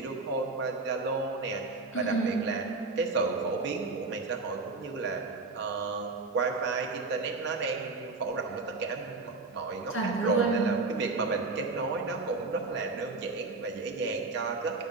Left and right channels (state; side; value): quieter; left; 3.7 dB